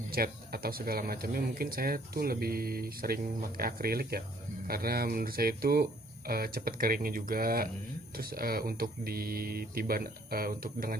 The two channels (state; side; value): normal; both; correlation 0.61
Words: cat atau segala macamnya mungkin saya tuh lebih sering pakai akrilik ya, karena menurut saya itu cepat keringnya juga. Terus untuk ditiban untuk dengan